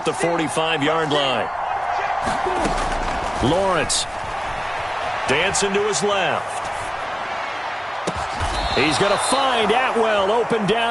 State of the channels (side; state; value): both; identical; correlation 1.00